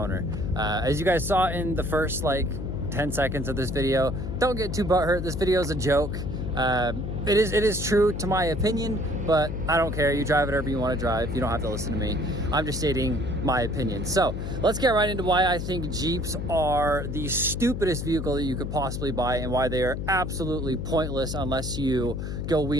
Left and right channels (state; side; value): noise; left; hum, 4 dB below the sound